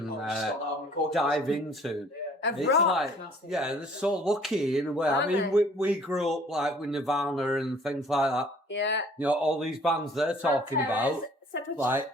dive into. Of It's rock. like, yeah, they're so lucky in a way. I Aren't mean, they? we grew up like with Nirvana and things like that. Yeah. All these bands they're talking about, like.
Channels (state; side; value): normal; both; correlation 0.55